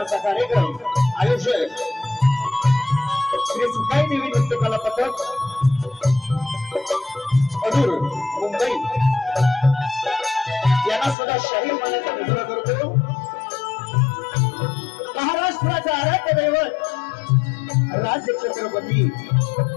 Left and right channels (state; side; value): drops out; right; at 11.2 s